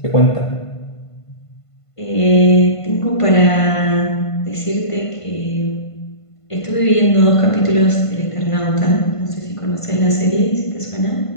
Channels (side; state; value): right; late; 1.5 ms